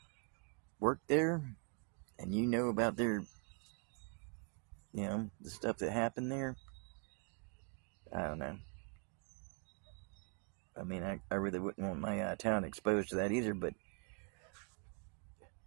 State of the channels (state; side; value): quieter; left; 39.9 dB